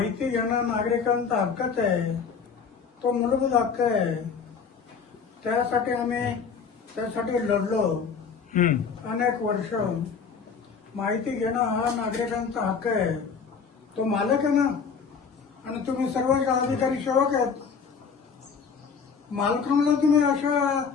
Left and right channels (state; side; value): quieter; right; 6.0 dB